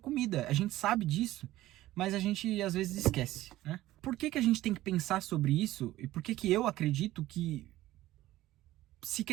A gente sabe disso, mas a gente às vezes esquece, né? Por que a gente tem que pensar sobre isso? E por que eu acredito que se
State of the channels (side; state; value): left; quieter; 15.7 dB